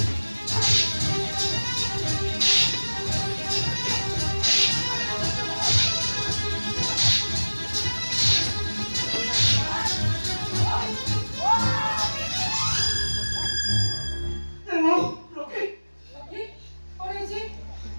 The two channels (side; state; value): both; inverted; correlation -1.00